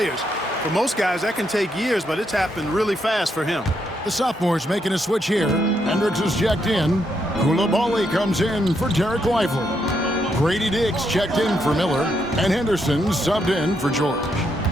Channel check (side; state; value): both; normal; correlation 0.78